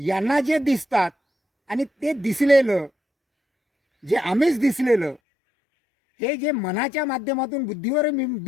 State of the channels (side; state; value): right; drops out; at 5.2 s